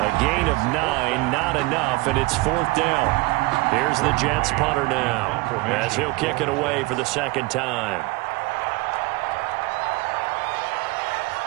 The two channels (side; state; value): left; quieter; 22.7 dB